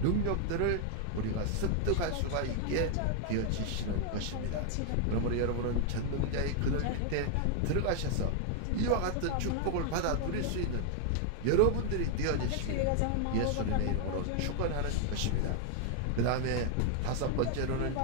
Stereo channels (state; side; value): different; both; correlation 0.00